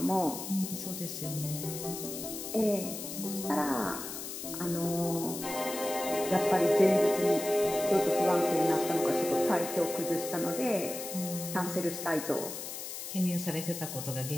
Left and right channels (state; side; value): noise; left; hiss, 8 dB below the sound